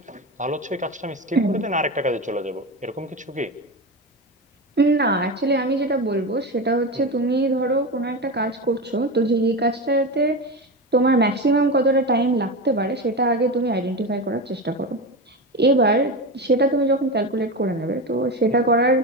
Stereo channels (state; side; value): normal; both; correlation 0.21